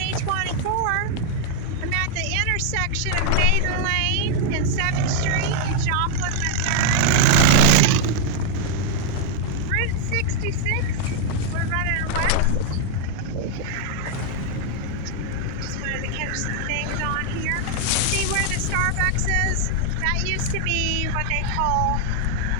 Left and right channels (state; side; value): different; both; correlation 0.00